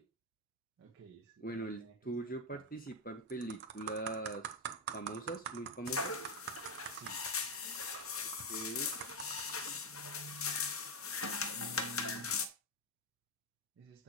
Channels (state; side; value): normal; both; correlation 0.06